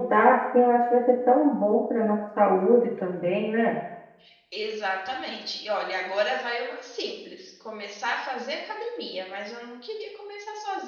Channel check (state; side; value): identical; both; correlation 1.00